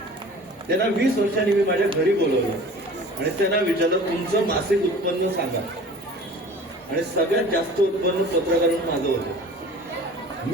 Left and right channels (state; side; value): normal; both; correlation 0.43